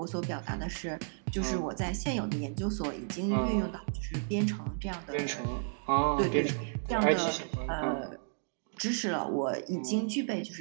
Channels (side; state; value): left; silent; digital silence